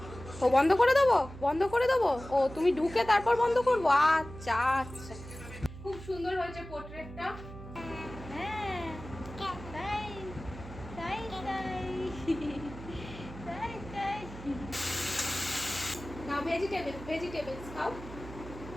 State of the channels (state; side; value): noise; right; hum, 13 dB below the sound